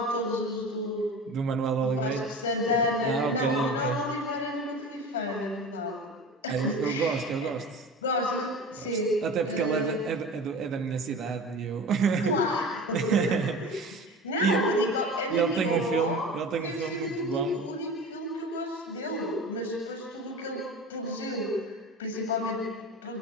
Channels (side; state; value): both; normal; correlation 0.34